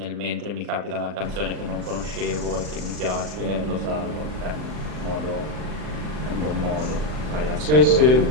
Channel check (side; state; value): left; late; 39 ms